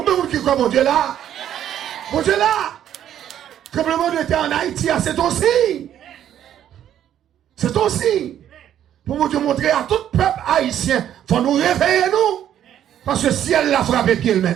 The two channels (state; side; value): quieter; left; 10.6 dB